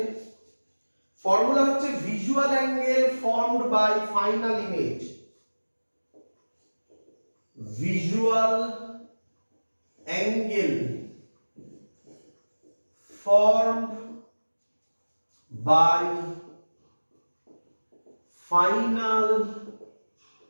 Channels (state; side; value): inverted; both; correlation -1.00